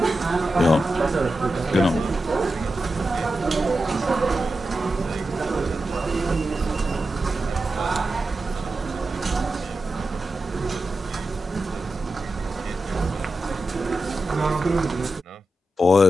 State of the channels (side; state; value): both; normal; correlation 0.90